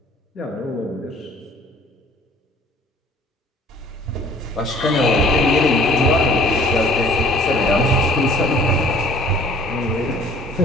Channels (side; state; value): both; normal; correlation 0.53